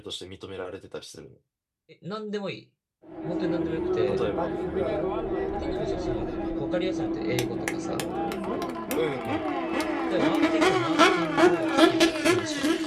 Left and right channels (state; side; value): identical; both; correlation 1.00